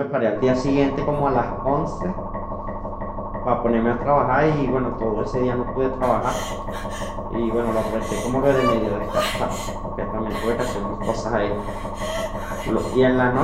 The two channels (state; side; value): identical; both; correlation 1.00